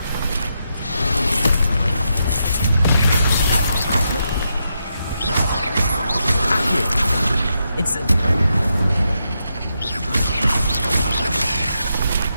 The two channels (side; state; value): both; inverted; correlation -0.83